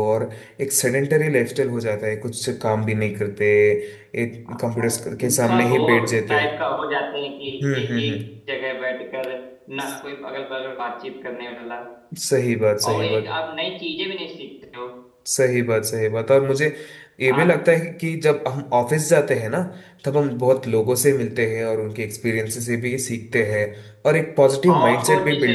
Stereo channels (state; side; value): identical; both; correlation 1.00